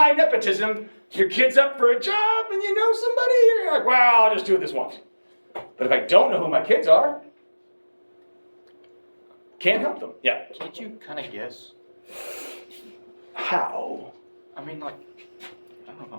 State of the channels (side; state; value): both; inverted; correlation -1.00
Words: your kid's up for a job, and you know somebody, you're like, well, I'll just do it this once. But if I don't know who my kids are, can't help them. Yeah. Can't you kind of guess? How? I mean, like, I don't